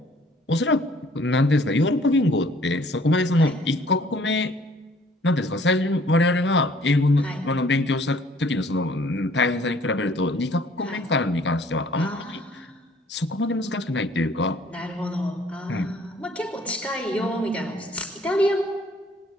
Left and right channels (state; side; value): normal; both; correlation 0.57